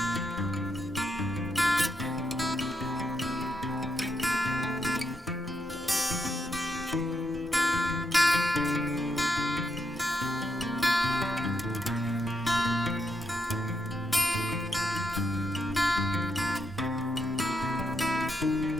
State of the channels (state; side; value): normal; both; correlation 0.80